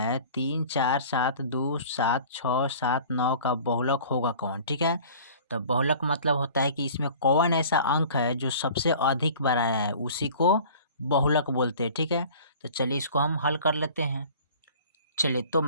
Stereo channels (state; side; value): inverted; both; correlation -0.45